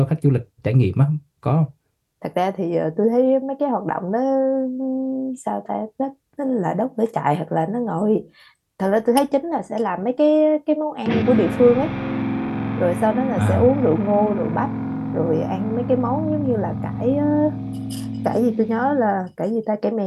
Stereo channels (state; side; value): identical; both; correlation 1.00